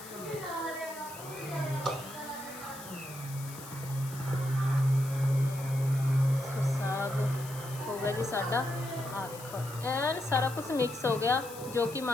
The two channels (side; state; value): left; noise; hiss, 15 dB below the sound